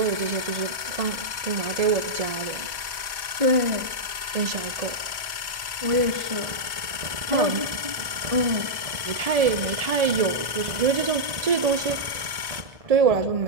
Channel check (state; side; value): late; left; 1.1 ms